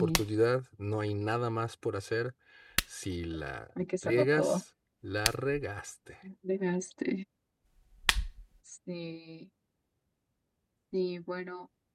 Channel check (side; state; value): both; identical; correlation 1.00